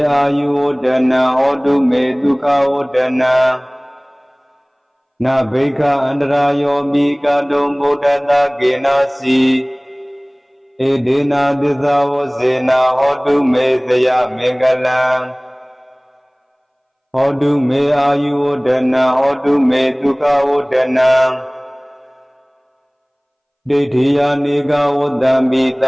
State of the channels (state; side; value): identical; both; correlation 1.00